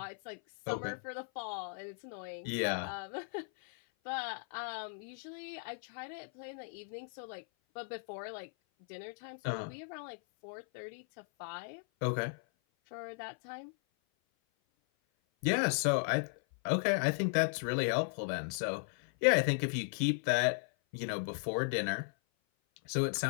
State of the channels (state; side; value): silent; right; 53 dB below the other